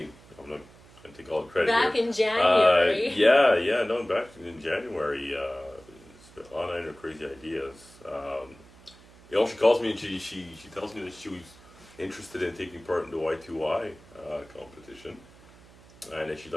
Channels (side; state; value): right; noise; hum, 24 dB below the sound